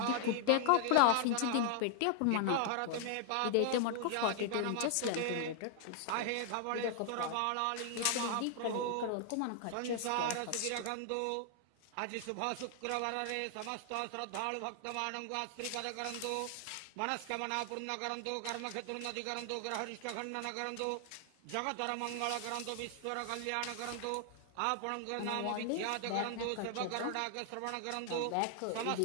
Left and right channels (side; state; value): both; different; correlation 0.00